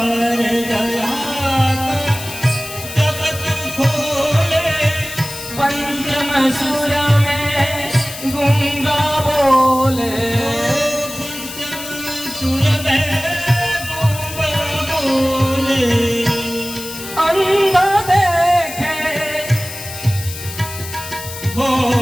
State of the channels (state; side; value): noise; left; hiss, 11 dB below the sound